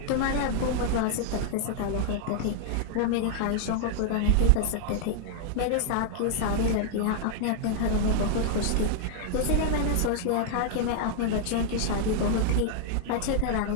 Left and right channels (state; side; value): different; both; correlation -0.01